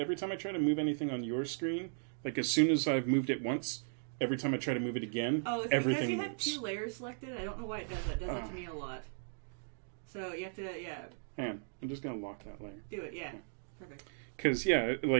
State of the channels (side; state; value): left; silent; digital silence